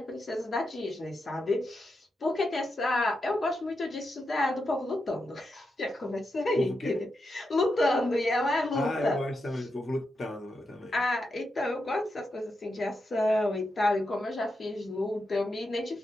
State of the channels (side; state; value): both; normal; correlation 0.86